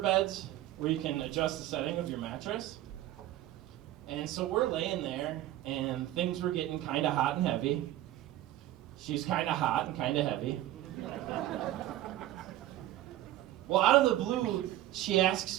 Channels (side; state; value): left; quieter; 14.1 dB